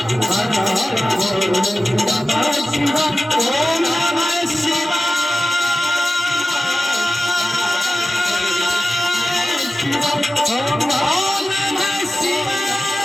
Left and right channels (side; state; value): both; normal; correlation 0.94